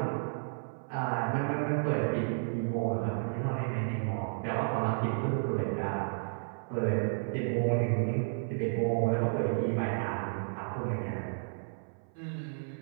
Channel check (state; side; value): silent; left; 56 dB below the other